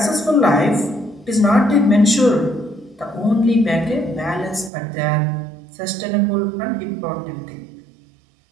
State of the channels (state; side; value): drops out; left; at 4.7 s